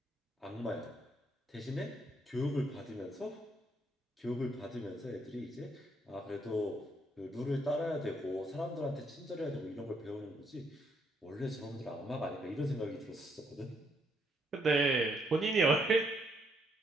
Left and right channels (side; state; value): both; normal; correlation 0.73